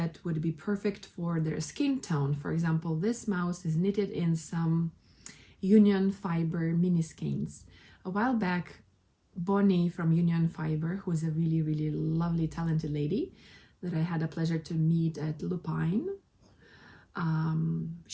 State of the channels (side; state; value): both; identical; correlation 1.00